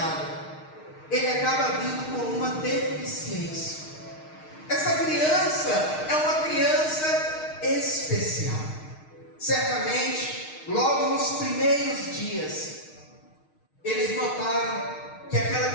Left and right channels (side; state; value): right; late; 6.5 ms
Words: ele acaba vindo com uma deficiência. Essa criança é uma criança especial. Certamente, logo nos primeiros dias, eles notaram que aquela